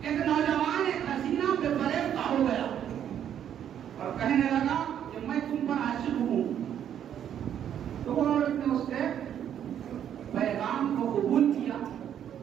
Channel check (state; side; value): quieter; left; 9.7 dB